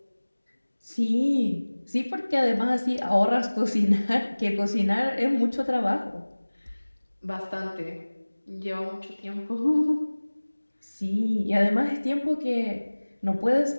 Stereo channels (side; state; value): both; inverted; correlation -1.00